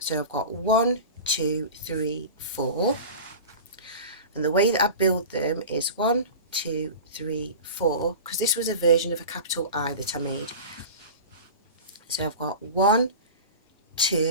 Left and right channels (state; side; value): inverted; both; correlation -0.33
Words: I've got 1, 2, 3, 4, and the way that I build them is 1, 2, 3, 4, because this was a version of a capital I that I made. So I've got 1,